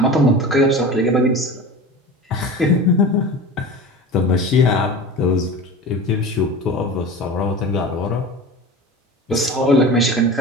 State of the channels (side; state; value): both; normal; correlation 0.33